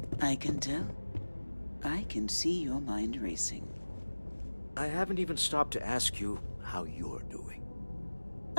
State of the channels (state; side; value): inverted; both; correlation -1.00